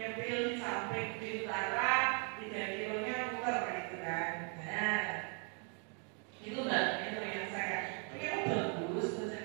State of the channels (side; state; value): left; quieter; 39.5 dB